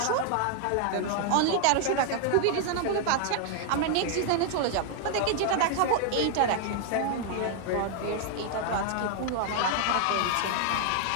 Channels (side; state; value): both; different; correlation 0.00